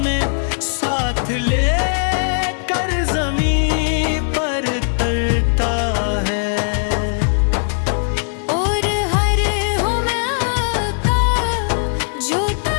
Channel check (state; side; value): silent; right; 60 dB below the other